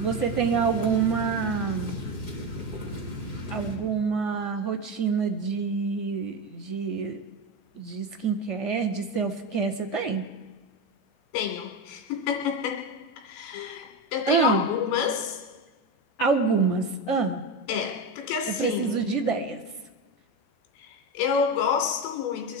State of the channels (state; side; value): late; right; 14 ms